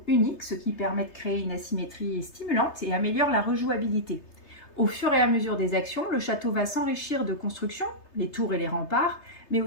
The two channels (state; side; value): late; right; 3.3 ms